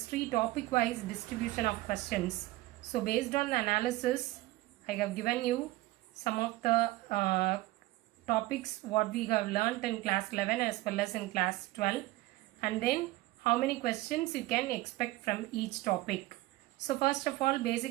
topic wise distribution of questions. So based on the analysis, I have given you some of the topics what we have learnt in class 11 as well as in class 12, and then how many questions you can expect from each topic. So first of all,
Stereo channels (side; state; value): left; quieter; 18.4 dB